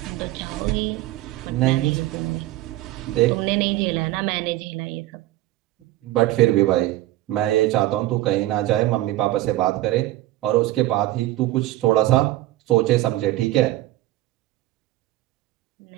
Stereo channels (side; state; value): left; quieter; 16.0 dB